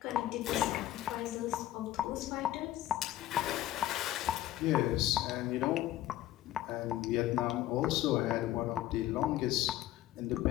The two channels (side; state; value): right; quieter; 14.1 dB